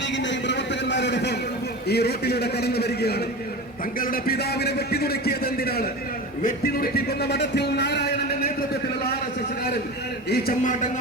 ലീഗിന്റെയും പ്രവർത്തകന്മാരോടൊപ്പം ഈ റോട്ടിലൂടെ കടന്നു വരികയാണ്. തങ്ങളുടെ പിതാവിനെ വെട്ടിനുറുക്കിയത് എന്തിനാണ്? വെട്ടിനുറുക്കിക്കൊന്ന മഠത്തിൽ നാരായണന്റെ നേതൃത്വത്തിലുള്ള RSSകാരൻ ഈ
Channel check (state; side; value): normal; both; correlation 0.29